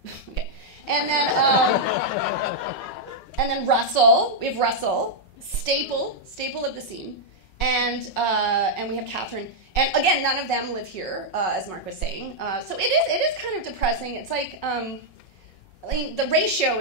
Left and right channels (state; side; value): late; right; 5.4 ms